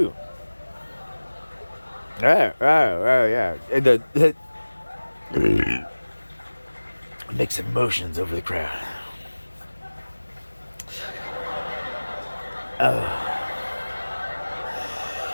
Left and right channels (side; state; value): both; inverted; correlation -1.00